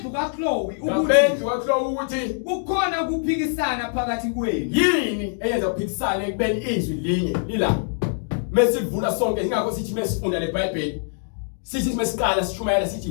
kaChloe ukuthi kukhona ukuphikisana phakathi kwenu. Yini eyenza ukuphikisana ekubeni izwi linye lila. Mesivula sonke ingakho sithi mesifunda leBhayibheli. Sithi mesiqala sishumayela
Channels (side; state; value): right; silent; 63 dB below the other